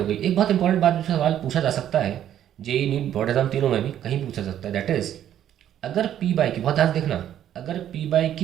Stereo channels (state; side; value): quieter; left; 10.8 dB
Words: गई। एक बहुत इंपॉर्टेंट बात जो सवाल पूछा जा सकता है जेईई नीट बोर्ड एग्जाम तीनों में भी कहीं पूछा सकता है, दैट इज अगर P/Q, बहुत ध्यान देखना, अगर